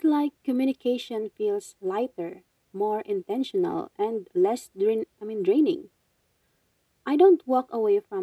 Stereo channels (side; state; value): both; identical; correlation 1.00